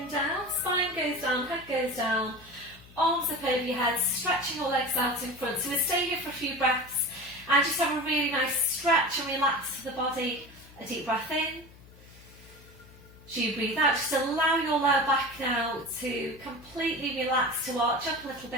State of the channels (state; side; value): noise; left; hum, 22 dB below the sound